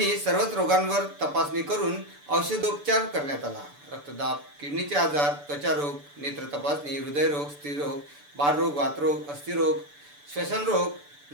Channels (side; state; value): left; late; 6.9 ms